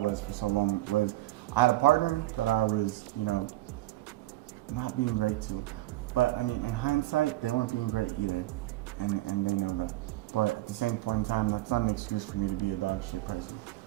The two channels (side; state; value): left; quieter; 17.2 dB